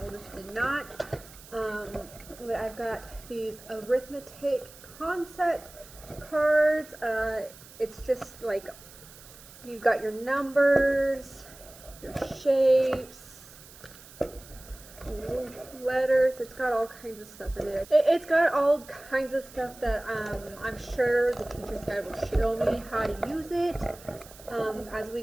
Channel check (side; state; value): right; noise; hiss, 20 dB below the sound